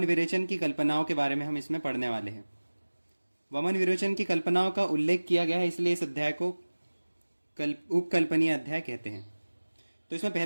विरेचन की कल्पनाओं के बारे में हम इसमें पढ़ने वाले हैं। वमन विरोचन की कल्पनाओं का उल्लेख किया गया है, इसलिए इस अध्याय को उपकल्पनीय अध्याय कहते हैं। तो इसमें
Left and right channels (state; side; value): inverted; both; correlation -1.00